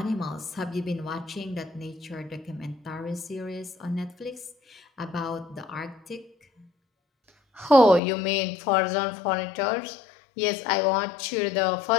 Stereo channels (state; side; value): drops out; right; at 8.0 s